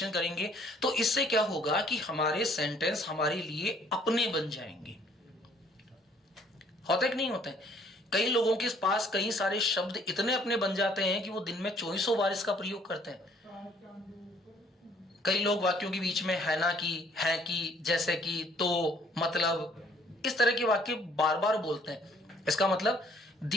करेंगे, तो इससे क्या होगा कि हमारे सेंटेंस हमारे लिए अपने बन जाएंगे। होता है कि नहीं होता है? कई लोगों के पास कई सारे शब्द इतने अपने बन जाते हैं कि वो दिन में 2400 बार इसका प्रयोग करते हैं। कई लोग वाक्यों के बीच में है ना की, है की, जैसे कि, तो, मतलब, इस तरह के वाक्य बार बार बोलते हैं। इसका मतलब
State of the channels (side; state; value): both; normal; correlation 0.60